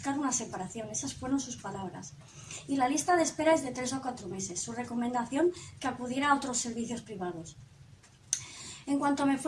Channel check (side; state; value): both; identical; correlation 1.00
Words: una separación. Esas fueron sus palabras. Y la lista de espera es de 3 o 4 meses. Su recomendación, que acudiera a otros servicios privados. En cuanto me